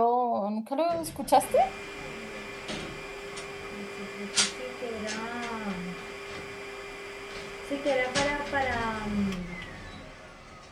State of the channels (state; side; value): identical; both; correlation 1.00